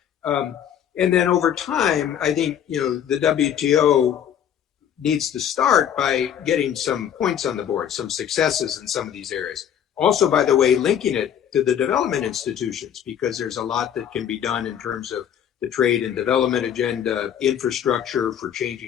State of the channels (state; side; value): quieter; right; 9.4 dB